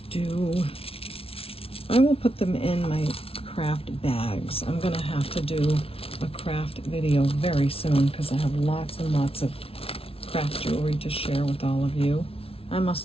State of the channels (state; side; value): late; right; 0.27 ms